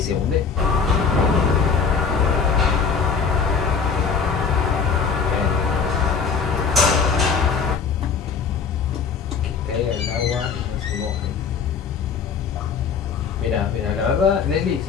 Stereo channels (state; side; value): quieter; right; 5.8 dB